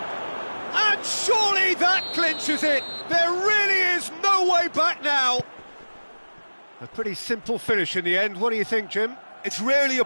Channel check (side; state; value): both; inverted; correlation -1.00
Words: And surely that clinches it! There really is no way back now! A pretty simple finish in the end. What do you think, Jim? It's rarely a